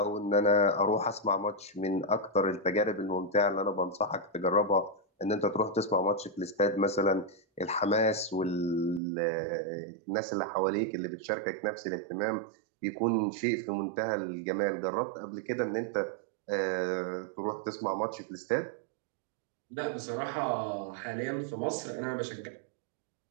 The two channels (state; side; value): drops out; left; at 9.0 s